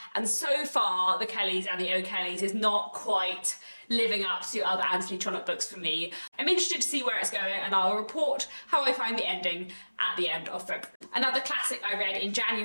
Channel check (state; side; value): inverted; both; correlation -1.00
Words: and so far The Kellys and the O'Kellys is not quite living up to other Anthony Trollope books for me. I'm interested to see where it's going, and I'll report how I find the ending at the end of February. Another classic I read in